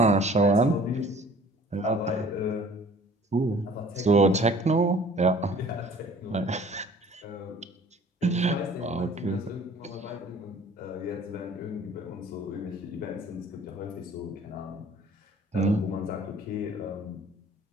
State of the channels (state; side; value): normal; both; correlation 0.51